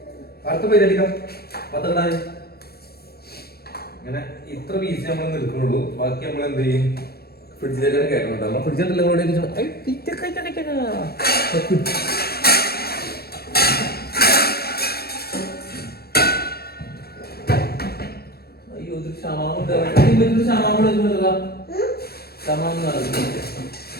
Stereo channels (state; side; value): late; right; 0.46 ms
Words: അടുത്ത പേര് അടിക്കാം. പത്തക്കിടാൻ ഇങ്ങനെ ഇത്ര പീസ് നമ്മൾ നിൽക്കുന്നുള്ളൂ. ബാക്കി നമ്മൾ എന്ത് ചെയ്യും? ഫ്രിഡ്ജിലേക്ക് കയറ്റുന്നുണ്ട്. നമ്മൾ ഫ്രിഡ്ജിൽ